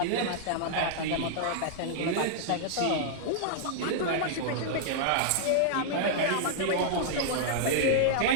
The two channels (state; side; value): different; both; correlation -0.01